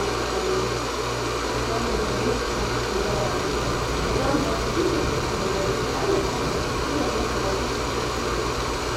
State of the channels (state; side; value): identical; both; correlation 1.00